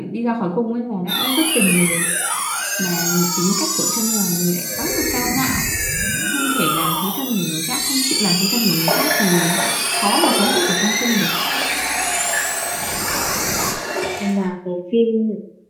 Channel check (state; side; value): identical; both; correlation 1.00